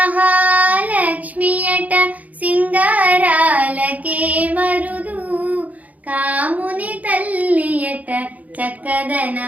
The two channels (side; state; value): left; late; 0.075 ms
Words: సింగారాలకే మరుదు కాముని తల్లియట